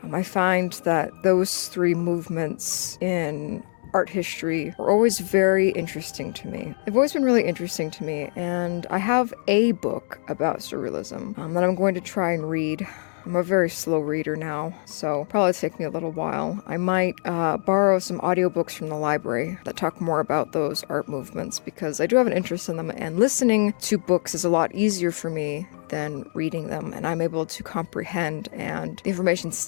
I find that those three movements in art history are always very interesting to me. They've always been really interesting to me, and I have a book about Surrealism that I'm going to try and read. I'm a very slow reader now, so probably take me a little while. I might borrow some audiobooks from the library that talk more about those art movements, because I do have an interest in them, and listening to books is a lot easier for me than reading them, and I'm able to comprehend, and the information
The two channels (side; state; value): right; silent; 57 dB below the other